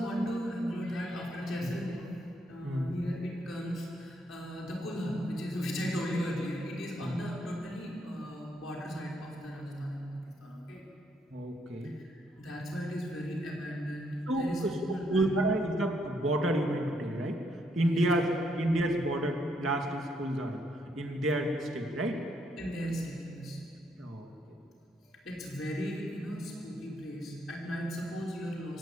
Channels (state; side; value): normal; both; correlation 0.74